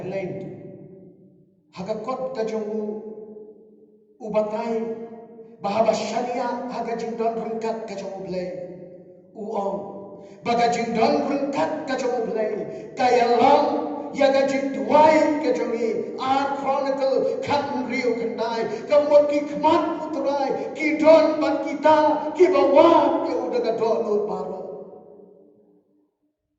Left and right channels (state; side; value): identical; both; correlation 1.00